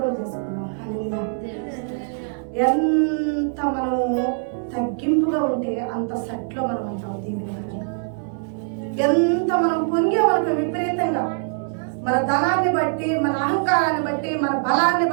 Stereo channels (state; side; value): silent; left; digital silence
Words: చేసుకున్నాం. ఎంత మనము తగ్గింపుగా ఉంటే అంత సెట్లో మనం అంటాం. దీని ఎంత మనం పొంగే మనకు విపరీతంగా మన ధనాన్ని బట్టి, మన అహంకారాన్ని బట్టి, మన బలాన్ని